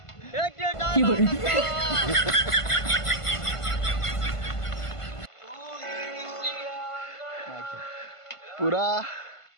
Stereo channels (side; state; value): right; late; 1.5 ms